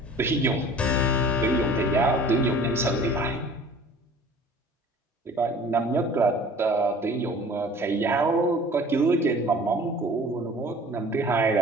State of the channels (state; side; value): normal; both; correlation 0.46